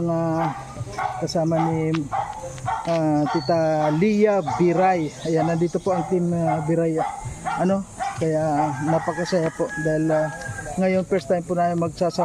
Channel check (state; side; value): identical; both; correlation 1.00